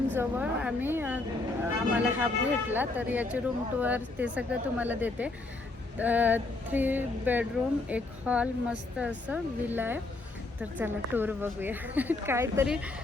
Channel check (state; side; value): quieter; right; 3.2 dB